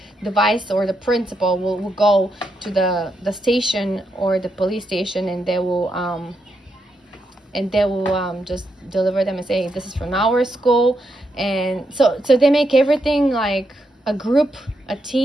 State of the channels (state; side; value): normal; both; correlation 0.81